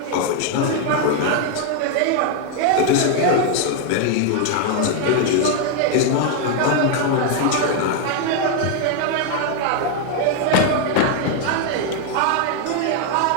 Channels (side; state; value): both; different; correlation 0.01